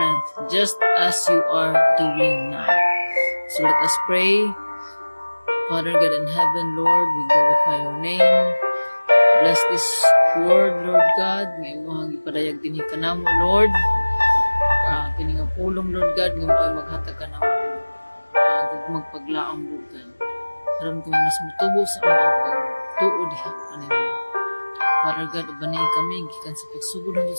just as you are doing now. So, let us pray. Father God in heaven, Lord, we glorify your name. Bless this word, Lord God. Ngayon mo ang ipadayag din ka na mo, Lord. Kini nga pulong, Lord God. Ngayon mo ay maghatag ka na mo. Magpaglaang, Lord God. Karoon ko mas mutubo sa mga pagtuod. Father God, ubanay kami. Gikan sa pagsugod doon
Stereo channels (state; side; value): inverted; both; correlation -1.00